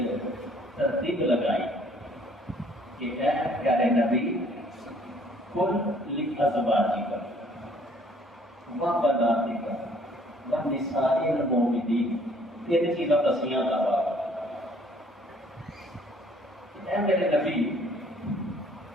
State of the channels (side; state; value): both; normal; correlation 0.60